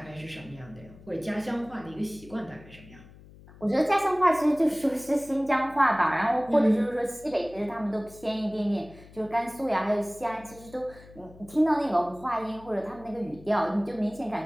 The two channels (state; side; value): noise; left; hum, 21 dB below the sound